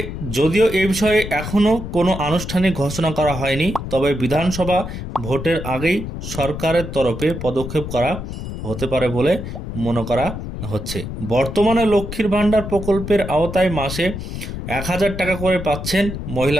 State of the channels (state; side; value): noise; left; rumble, 7 dB below the sound